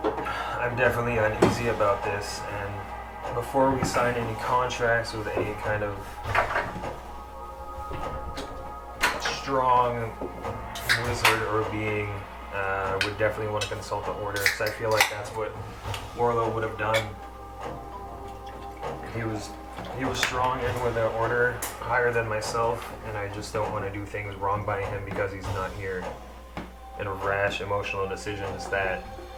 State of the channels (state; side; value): identical; both; correlation 1.00